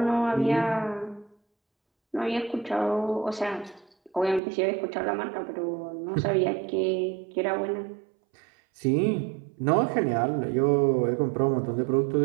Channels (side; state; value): left; drops out; at 4.4 s